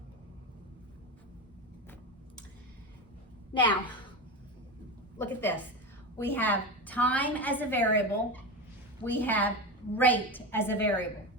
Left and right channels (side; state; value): both; normal; correlation 0.21